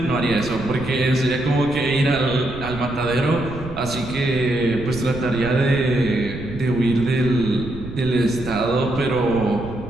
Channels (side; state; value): right; noise; rumble, 12 dB below the sound